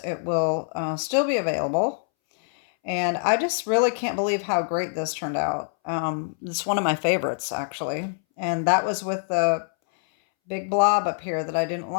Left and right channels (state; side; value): silent; right; 62 dB below the other